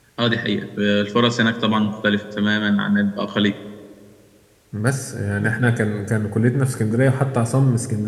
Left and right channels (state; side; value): identical; both; correlation 1.00